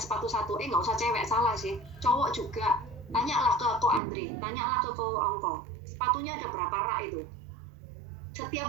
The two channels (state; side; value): drops out; left; at 4.0 s